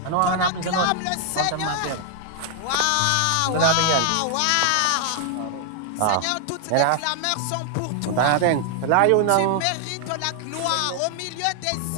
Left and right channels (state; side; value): different; both; correlation 0.00